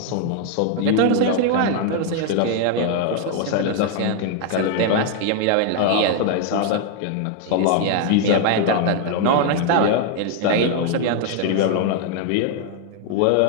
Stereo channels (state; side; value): different; both; correlation 0.00